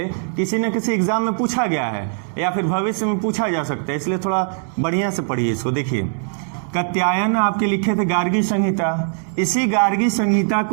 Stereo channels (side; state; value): left; silent; digital silence